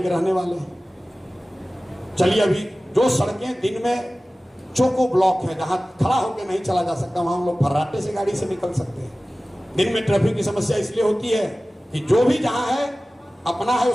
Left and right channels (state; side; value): normal; both; correlation 0.97